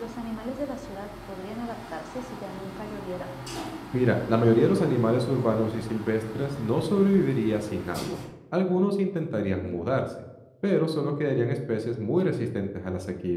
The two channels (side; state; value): both; identical; correlation 1.00